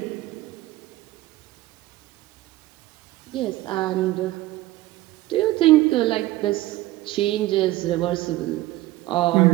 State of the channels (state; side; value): quieter; left; 17.1 dB